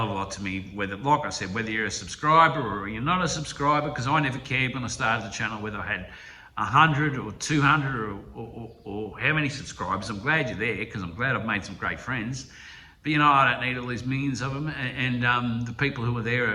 of a lot to me, whether, like I said, whether you're a subscriber or you're not a subscriber, because I never cared when I started the channel whether I had 100 or 200 or how many subscribers. I'm glad you're there, because I'm glad I've made some great friends. But, you know, I don't need all these millions of them. And the people who are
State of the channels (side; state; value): both; identical; correlation 1.00